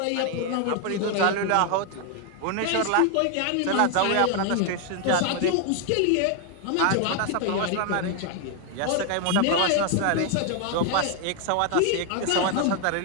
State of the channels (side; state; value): both; different; correlation 0.00